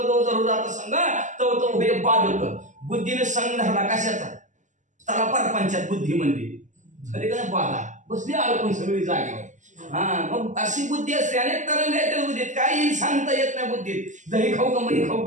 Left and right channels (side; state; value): left; late; 0.36 ms